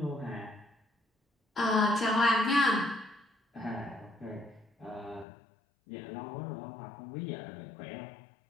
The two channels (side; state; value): right; drops out; at 5.2 s